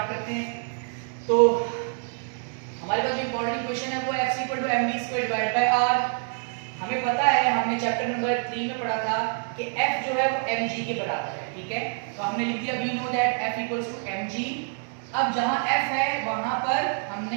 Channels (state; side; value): silent; left; 56 dB below the other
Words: करते हैं। तो हमारे पास जो इंपॉर्टेंट इक्वेशन है वो f = mv² divide by r। हमें पता है, हमने चैप्टर नंबर 3 में पढ़ा था कि f जो है वो mg के बराबर है, ठीक है? तो हमने लिख दिया we know that f = mg। अब जहां f है वहां पर हमने